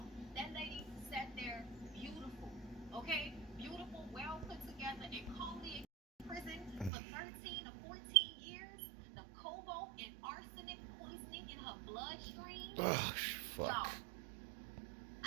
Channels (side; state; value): left; drops out; at 6.9 s